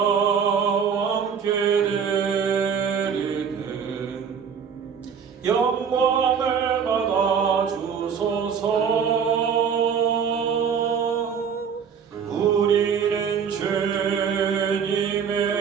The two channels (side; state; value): left; quieter; 7.0 dB